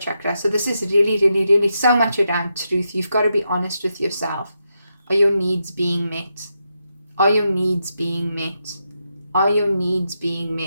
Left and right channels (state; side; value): inverted; both; correlation -0.84